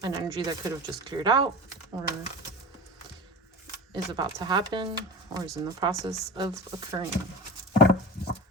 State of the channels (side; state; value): both; normal; correlation 0.30